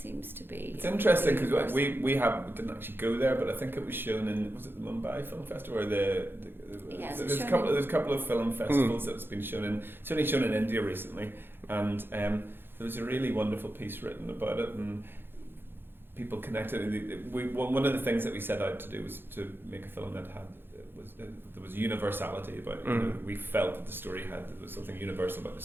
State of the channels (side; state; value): left; late; 0.10 ms